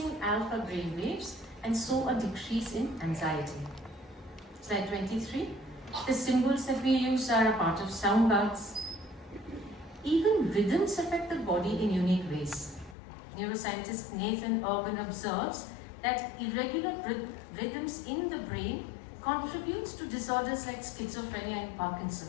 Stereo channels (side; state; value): right; drops out; at 13.0 s